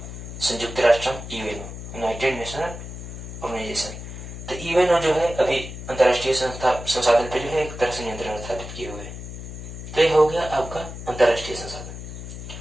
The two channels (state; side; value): noise; left; hum, 10 dB below the sound